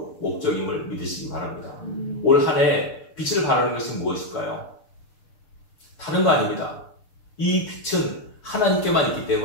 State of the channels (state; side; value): late; right; 6.7 ms